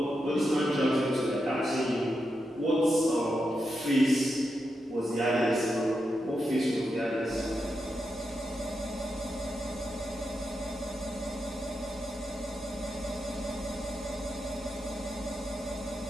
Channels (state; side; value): normal; both; correlation 0.86